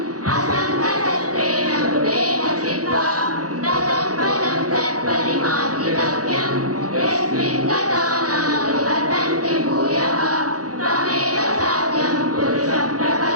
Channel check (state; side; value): late; left; 0.67 ms